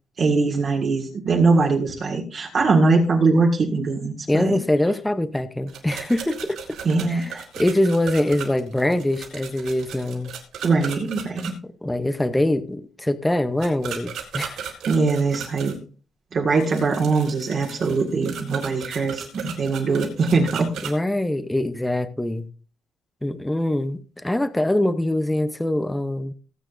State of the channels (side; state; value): both; normal; correlation 0.88